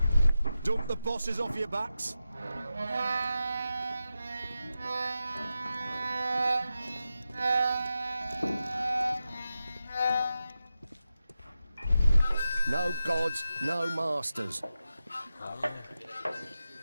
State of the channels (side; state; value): both; inverted; correlation -0.91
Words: Dump the bosses off your backs. No gods, no masters.